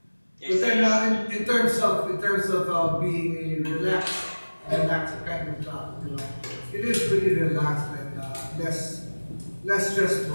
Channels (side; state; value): both; inverted; correlation -1.00